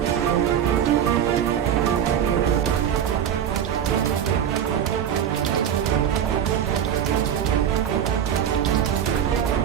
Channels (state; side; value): quieter; left; 9.2 dB